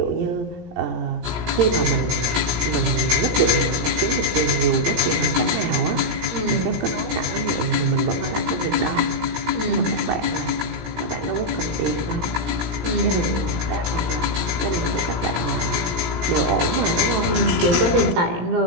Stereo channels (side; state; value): left; late; 17 ms